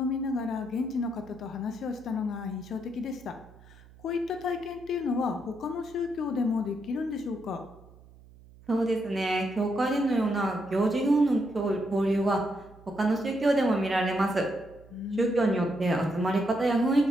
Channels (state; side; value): noise; right; hum, 23 dB below the sound